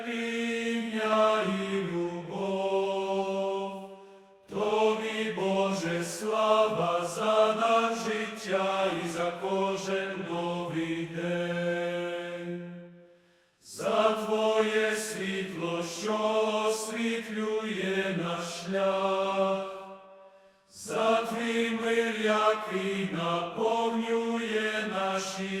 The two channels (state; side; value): identical; both; correlation 1.00